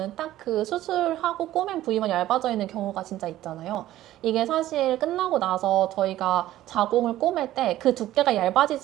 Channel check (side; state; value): left; quieter; 14.3 dB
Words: 딱 그 수술하고 꼬맨 부위만 얇아져 있는 경우가 진짜 있잖아요. 이게 사실 끝나고 나서 저희가 자궁을 꼬맬 때 그 두께가